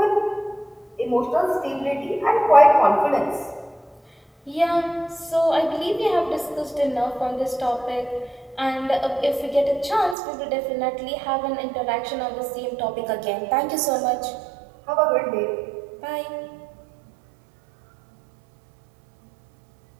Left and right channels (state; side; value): drops out; left; at 10.2 s